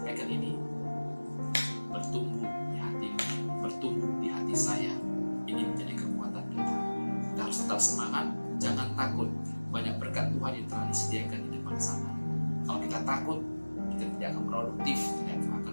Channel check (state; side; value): inverted; both; correlation -1.00